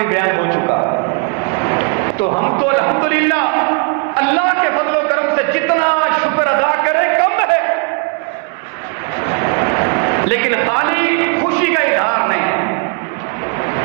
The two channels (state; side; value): quieter; left; 33.8 dB